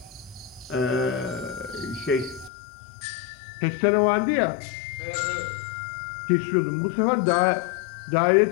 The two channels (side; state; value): right; drops out; at 2.5 s